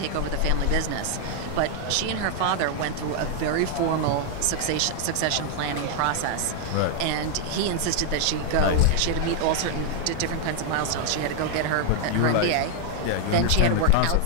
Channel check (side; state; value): both; different; correlation 0.00